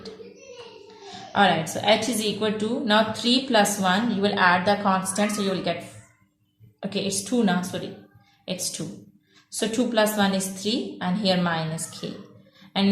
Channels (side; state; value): both; identical; correlation 1.00